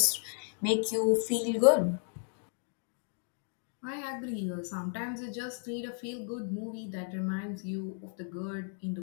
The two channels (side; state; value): right; silent; 55 dB below the other